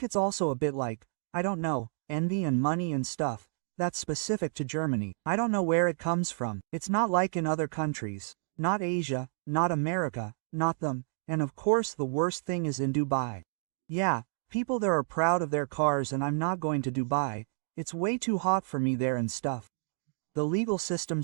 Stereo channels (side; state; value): left; silent; digital silence